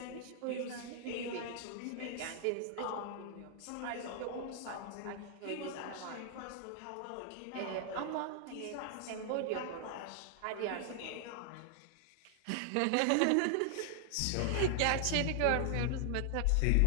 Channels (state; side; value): different; both; correlation 0.00